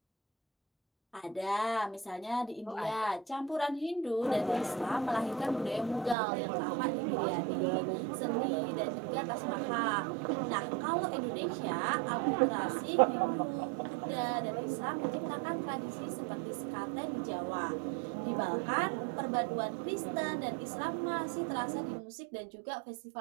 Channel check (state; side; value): drops out; left; at 6.2 s